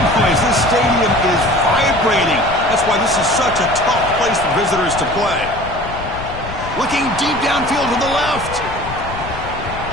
noise. This stadium is vibrating. That's why this is such a tough place for visitors to play. Looking deep downfield to the left.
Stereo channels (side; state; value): left; noise; rumble, 11 dB below the sound